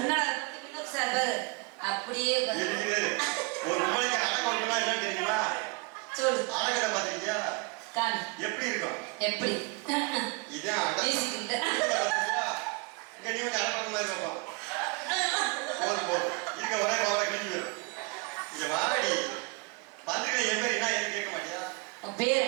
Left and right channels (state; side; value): quieter; left; 29.2 dB